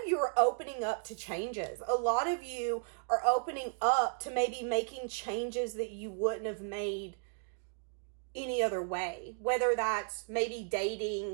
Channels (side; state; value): left; silent; 55 dB below the other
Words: you are opening up to changes. A lot of you are opening up to maybe making changes that you wouldn't have made any other way, whether that's maybe